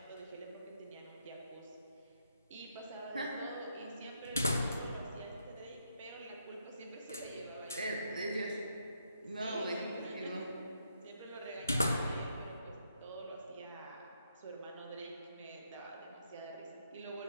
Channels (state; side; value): inverted; both; correlation -0.75